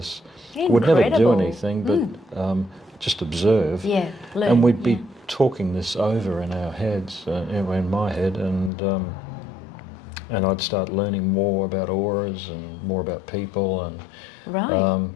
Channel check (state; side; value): drops out; right; at 8.7 s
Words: Incredible. We'd never do anything, but just observe. Yeah, learn. And we'd be talking this over in our heads, in my head, and I'd start learning more about auras and more about people, and right.